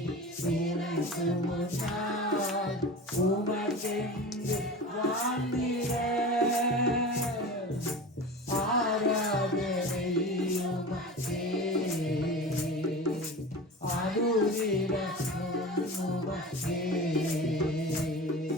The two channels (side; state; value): both; normal; correlation 0.33